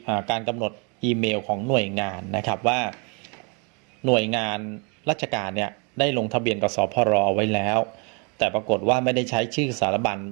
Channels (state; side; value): quieter; left; 33.7 dB